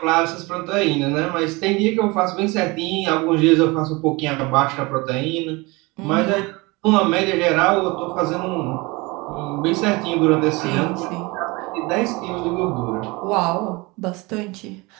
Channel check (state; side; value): quieter; left; 24.7 dB